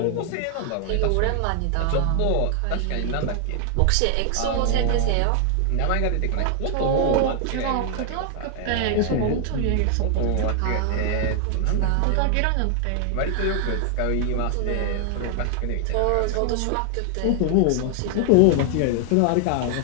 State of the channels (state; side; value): different; both; correlation 0.00